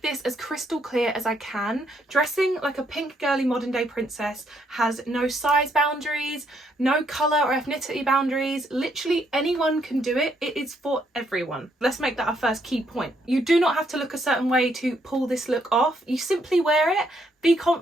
this as crystal clear as I can. Dressing like a pink girly modern day princess has no size boundaries, no colour or ethnicity boundaries. Literally anyone can do it. It is for everyone. Let's make that our first key point. You do not have to look a certain way to pull this look off. You simply wear it, be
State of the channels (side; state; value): both; normal; correlation 0.73